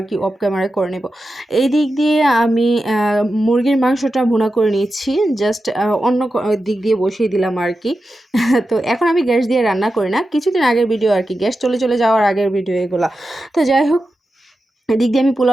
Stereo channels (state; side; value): normal; both; correlation 0.91